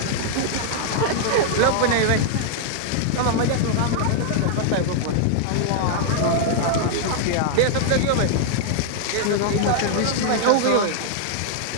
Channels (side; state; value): both; different; correlation -0.01